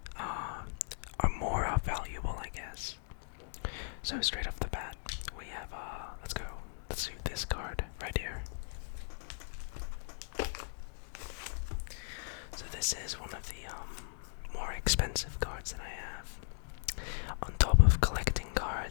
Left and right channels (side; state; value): right; silent; digital silence